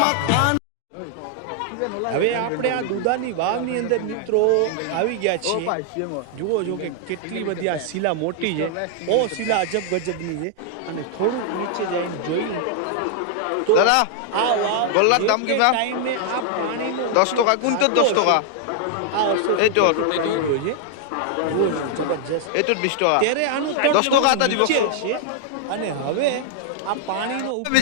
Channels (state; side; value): different; both; correlation -0.01